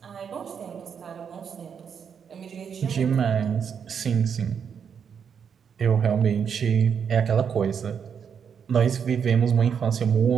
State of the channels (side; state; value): left; quieter; 7.2 dB